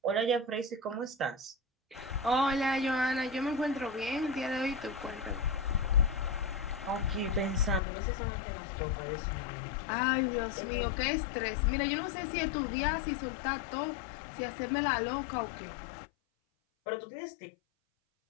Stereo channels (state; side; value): drops out; right; at 7.8 s